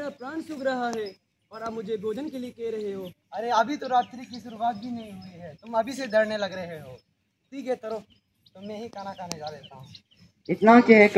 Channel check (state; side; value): identical; both; correlation 1.00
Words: प्राण सूख रहा है और आप मुझे भोजन के लिए कह रहे हो। अरे अभी तो रात्रि की शुरुआत भी नहीं हुई है, तुम अभी से डरने लग रहे हो। ठीक है, चलो तो मैं ही खाना खाने जा देता हूँ। इतना